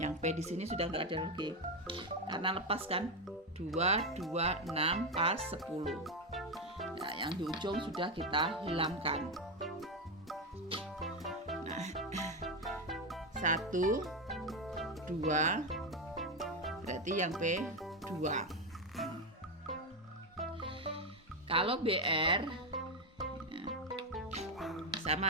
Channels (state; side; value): normal; both; correlation 0.09